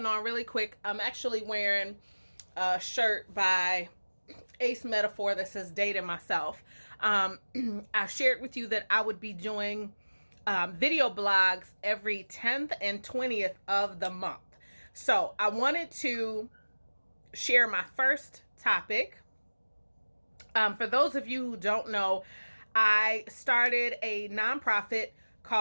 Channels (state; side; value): inverted; both; correlation -1.00